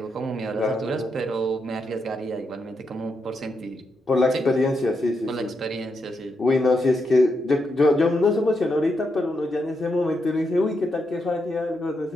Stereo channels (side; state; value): both; normal; correlation 0.83